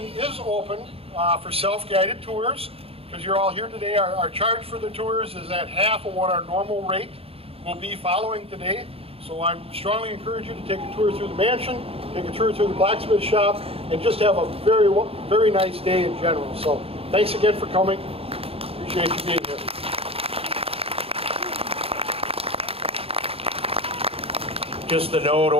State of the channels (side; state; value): left; late; 0.28 ms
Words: is open for self-guided tours. Because you're all here today, our charge for the tours is at half of what our normal rate will be following today. So I strongly encourage you to take a tour through the mansion, take a tour through the blacksmith shop, and just have a very, very nice day in general. So thanks again for coming. Appreciate you being here. Just a note,